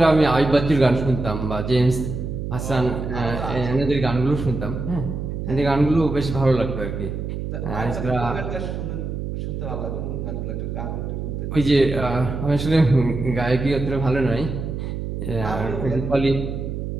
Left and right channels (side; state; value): right; noise; hum, 5 dB below the sound